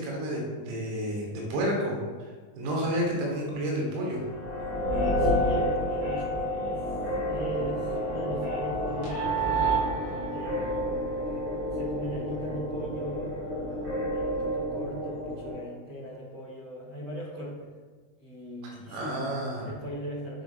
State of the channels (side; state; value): left; late; 20 ms